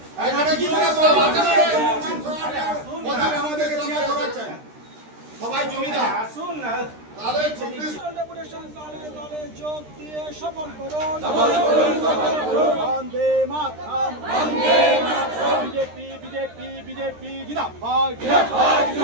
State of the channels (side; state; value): left; late; 13 ms